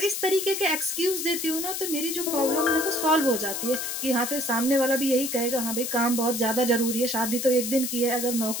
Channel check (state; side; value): noise; left; hiss, 4 dB below the sound